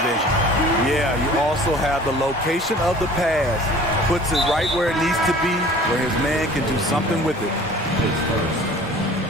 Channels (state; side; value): normal; both; correlation 0.47